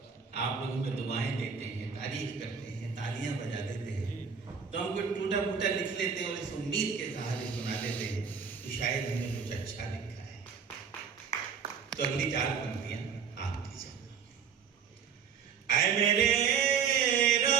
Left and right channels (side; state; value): left; quieter; 6.6 dB